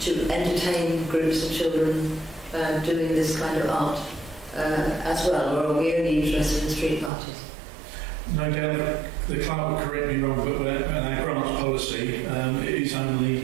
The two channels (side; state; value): left; drops out; at 7.1 s